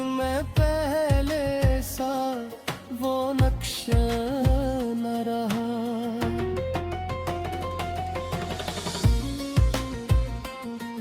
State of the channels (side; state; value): both; identical; correlation 1.00